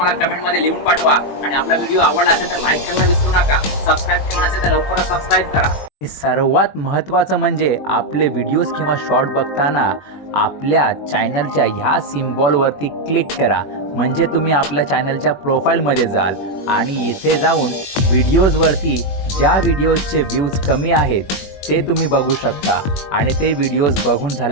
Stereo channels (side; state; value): right; late; 21 ms